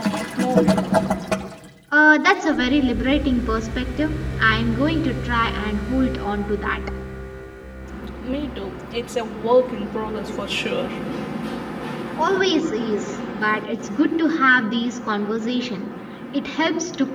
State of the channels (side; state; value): both; identical; correlation 1.00